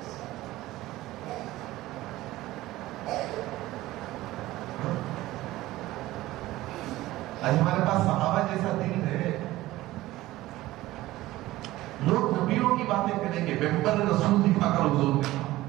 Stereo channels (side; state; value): left; quieter; 17.0 dB